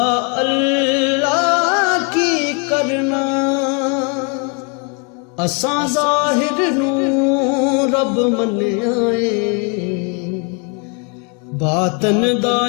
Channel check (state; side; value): quieter; right; 36.1 dB